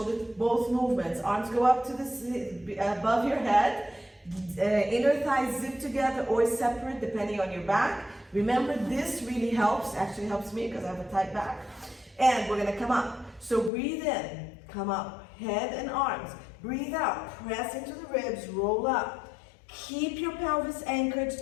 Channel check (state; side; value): drops out; right; at 13.7 s